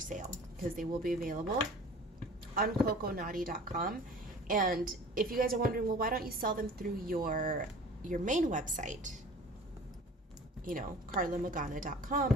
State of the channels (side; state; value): both; normal; correlation 0.45